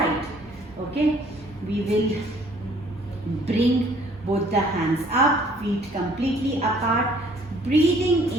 Okay, we will bring both the hands up, feet completely apart. Breathing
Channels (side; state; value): both; normal; correlation 0.59